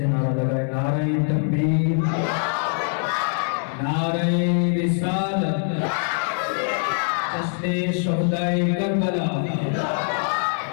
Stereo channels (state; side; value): silent; right; 63 dB below the other